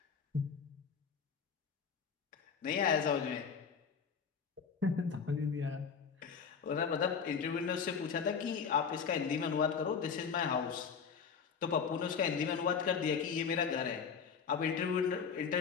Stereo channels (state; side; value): quieter; right; 6.3 dB